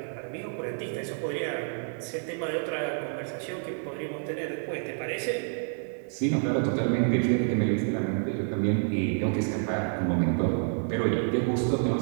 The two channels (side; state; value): left; silent; 56 dB below the other